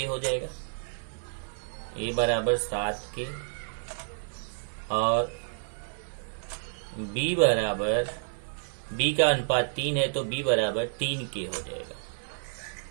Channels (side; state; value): left; silent; 58 dB below the other